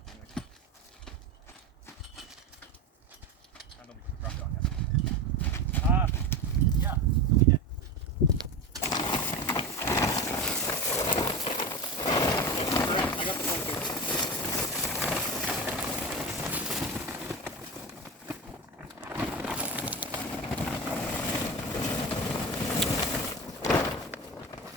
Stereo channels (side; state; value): both; normal; correlation 0.24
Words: Anyway. I know we can drop it on yet. Yeah, we did. I got the phone too.